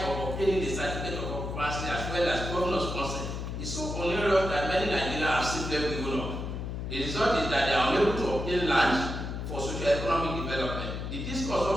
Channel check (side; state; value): left; noise; hum, 5 dB below the sound